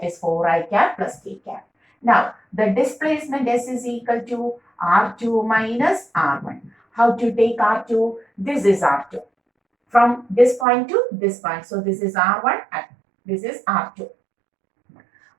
is 4i cap plus k cap. Now, the displacement S is equal to R2 minus R1. How to take R2? This is R2. From this point to this point. So, this is R1 and this is R2.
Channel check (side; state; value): left; drops out; at 10.7 s